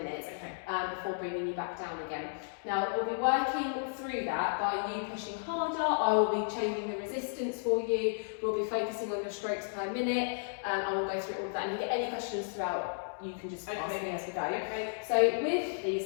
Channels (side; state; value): right; silent; digital silence